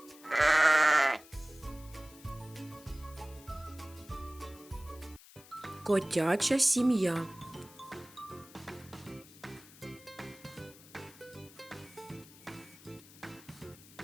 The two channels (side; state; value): left; noise; hiss, 21 dB below the sound